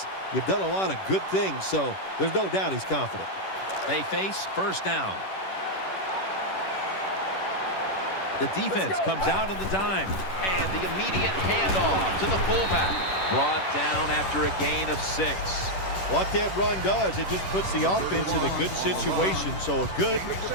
you've done a lot of good things. So there's no doubt he's confident. They face first down. The defense comes out on the dime. And the immediate handoff to the fullback. Brought down after a gain of 6. What that run does, it just puts the offense in a good situation. So a good,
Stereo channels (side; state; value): right; late; 10 ms